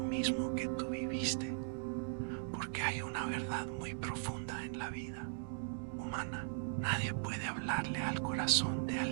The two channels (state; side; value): silent; left; digital silence